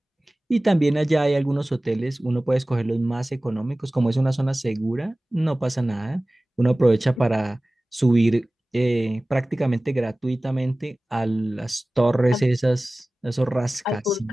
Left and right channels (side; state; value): both; normal; correlation 0.98